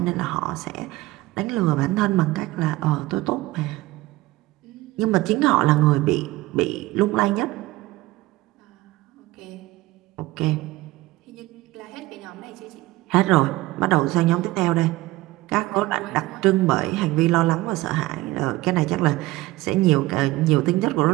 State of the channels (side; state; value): left; quieter; 18.8 dB